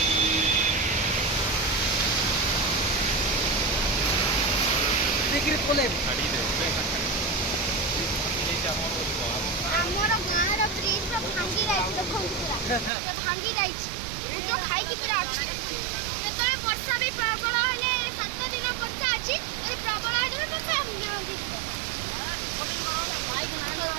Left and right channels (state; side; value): drops out; left; at 12.9 s